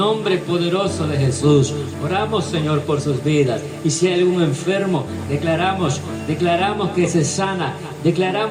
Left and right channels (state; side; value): identical; both; correlation 1.00